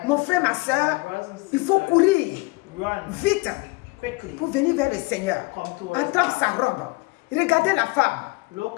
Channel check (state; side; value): quieter; right; 25.7 dB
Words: Mon frère, ma soeur, il faut courir vite pour venir vers le Seigneur. Attendre sa robe. Regardez la femme